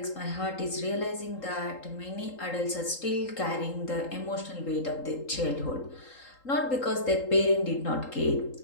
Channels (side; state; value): right; late; 3.8 ms